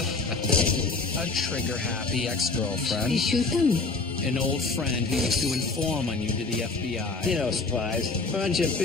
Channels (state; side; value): quieter; right; 3.8 dB